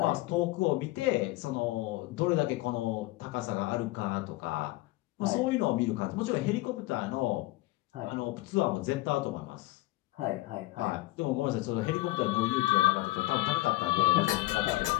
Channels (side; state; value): right; quieter; 19.0 dB